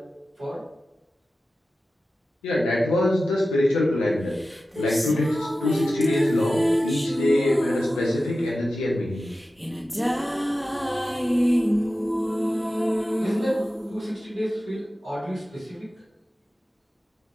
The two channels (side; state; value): both; normal; correlation 0.94